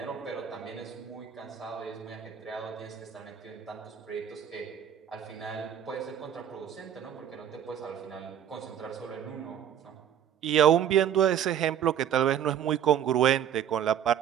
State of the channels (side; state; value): left; quieter; 9.5 dB